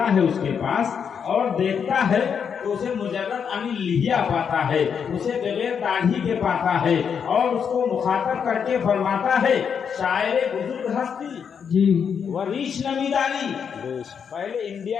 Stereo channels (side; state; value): right; quieter; 7.1 dB